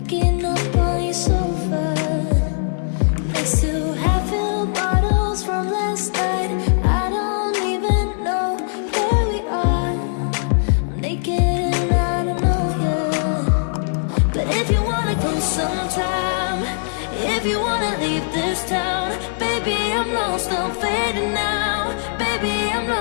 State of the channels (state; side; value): silent; right; digital silence